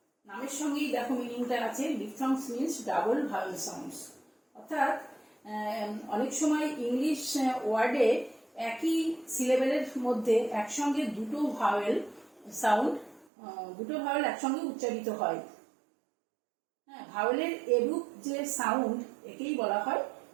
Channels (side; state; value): left; drops out; at 13.2 s